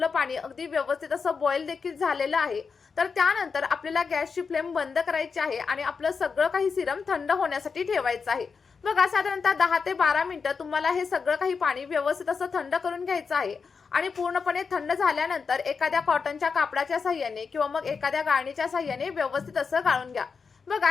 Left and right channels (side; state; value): right; quieter; 5.3 dB